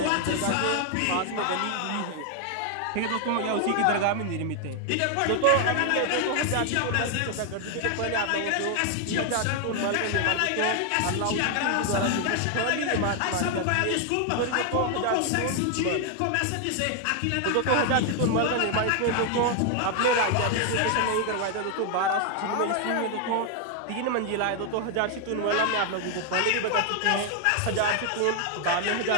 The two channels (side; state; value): both; different; correlation 0.00